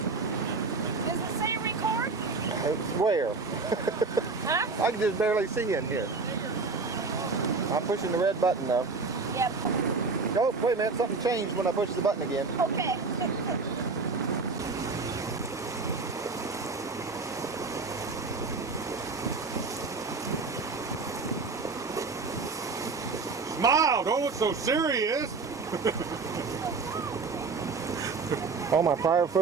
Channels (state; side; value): quieter; left; 4.3 dB